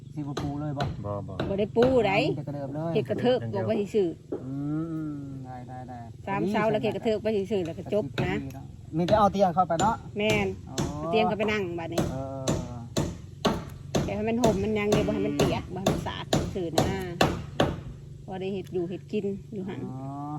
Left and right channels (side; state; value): both; identical; correlation 1.00